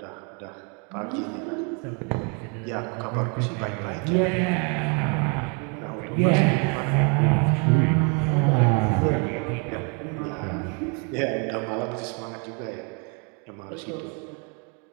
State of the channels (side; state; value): left; quieter; 35.7 dB